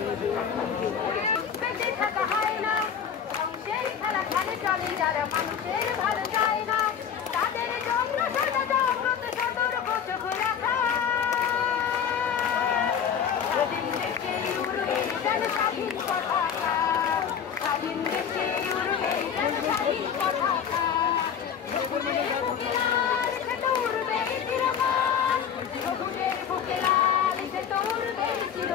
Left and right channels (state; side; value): quieter; right; 7.9 dB